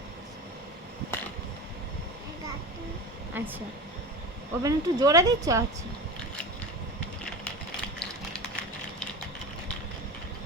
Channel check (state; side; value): normal; both; correlation 0.29